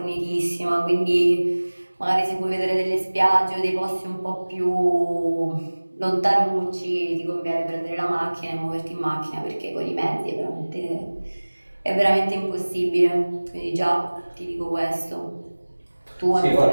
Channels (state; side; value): inverted; both; correlation -1.00